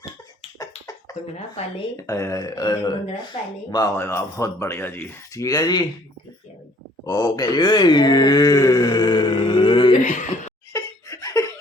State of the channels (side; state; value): both; normal; correlation 0.58